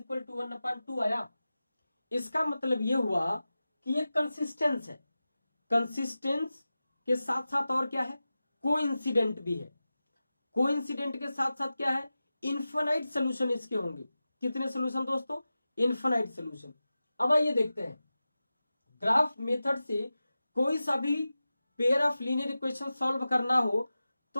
to 1/2 आया। इसका मतलब ये हुआ कि ये कंसिस्टेंस है। कंसिस्टेंस के साथ साथ और क्या है, कोइंसिडेंट भी है। कोइंसिडेंट के साथ साथ क्या है, इनफाइनाइट सोल्यूशन इसके होंगे। कितने सोल्यूशन दोस्तों, इनफाइनाइट सोल्यूशन। अब आइए देखते हैं, ग्राफ मेथड से कोई सा भी pair of linear equation solve करना हो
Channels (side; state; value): both; inverted; correlation -0.94